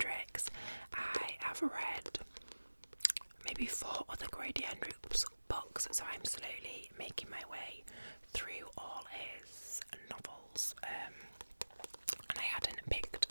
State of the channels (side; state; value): both; inverted; correlation -1.00